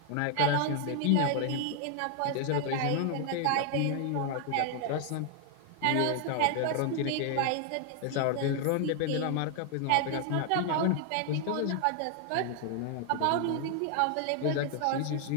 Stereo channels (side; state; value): both; different; correlation 0.00